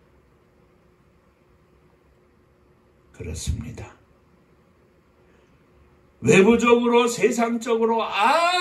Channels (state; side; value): identical; both; correlation 1.00